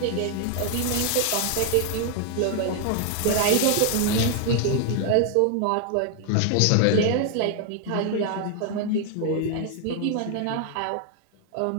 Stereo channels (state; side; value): different; both; correlation 0.00